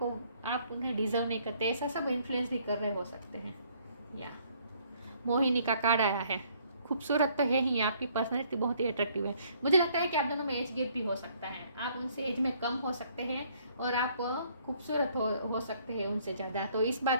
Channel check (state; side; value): inverted; both; correlation -0.64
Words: उन्हें डिजर्व नहीं करते, ऐसा सब इन्फ्लुएंस भी कर रहे हो सकते हैं। या मोहिनी का कार्ड आया है, खूबसूरत तो है ही, आपकी पर्सनैलिटी बहुत ही अट्रैक्टिव है। मुझे लगता है कि आप दोनों में एज गैप भी हो सकता है, आप उनसे एज में कम हो सकते हैं और आप खूबसूरत हो सकते हैं उनसे ज़्यादा, तो इस